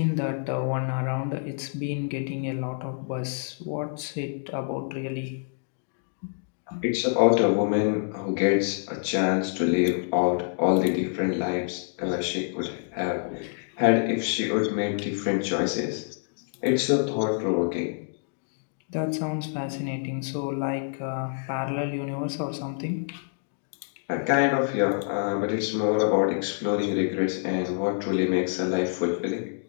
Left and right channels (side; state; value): right; silent; digital silence